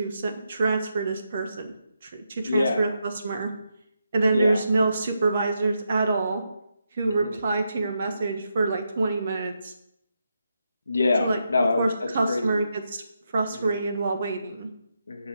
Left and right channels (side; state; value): both; inverted; correlation -0.83